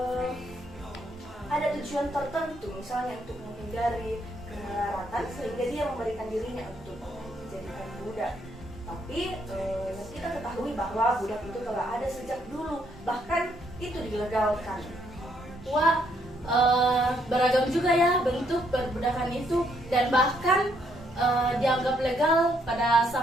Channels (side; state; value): both; normal; correlation 0.72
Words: ada tujuan tertentu, misalnya untuk menghindari kemelaratan, sehingga dia memberikan dirinya untuk dijadikan budak. Tapi kita ketahui bahwa budak itu telah ada sejak dulu, bahkan itu dilegalkan. Wah, beragam juga ya bentuk perbudakan itu, dan bahkan dianggap legal pada